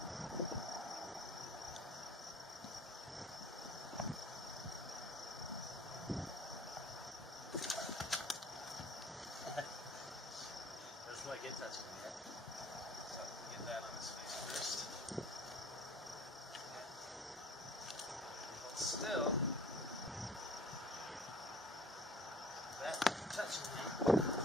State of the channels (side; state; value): both; normal; correlation 0.50